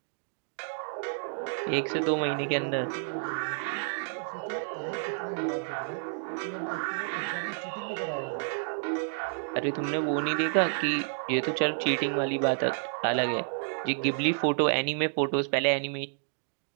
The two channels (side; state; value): left; silent; digital silence